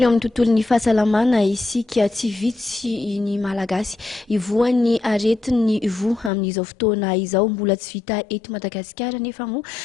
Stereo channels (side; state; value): right; drops out; at 6.3 s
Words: eo amin'ny tontolon'ny fahasalamana isika tsy vitsy ny malagasy ivoan'ny aretin'ny vo amin'izao fotoana izao mbola tsy vita eto Madagasikara nefa moa